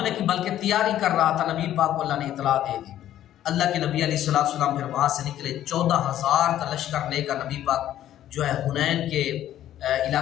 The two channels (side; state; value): right; quieter; 12.2 dB